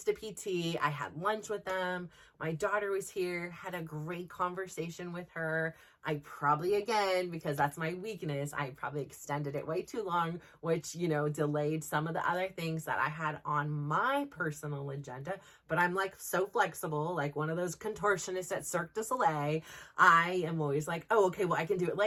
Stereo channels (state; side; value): identical; both; correlation 1.00